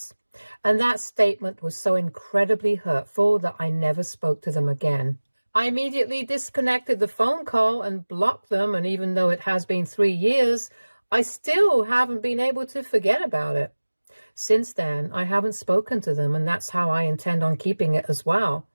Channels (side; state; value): both; inverted; correlation -1.00